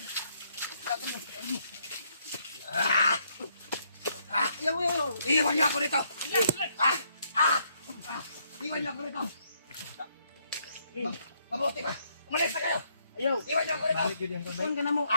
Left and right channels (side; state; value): both; inverted; correlation -0.72